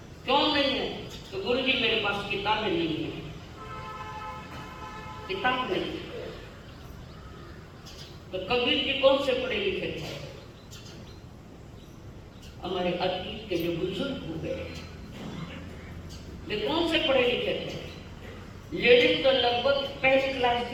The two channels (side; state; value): both; identical; correlation 1.00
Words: क्यों नहीं है? तो गुरुजी मेरे पास किताबें नहीं है। किताब नहीं है तो कबीर जी कौन से पढ़े लिखे थे? हमारे अतीत के जो बुजुर्ग हो गए वे कौन से पढ़े लिखे थे? लेडीज तो लगभग पहली क्लास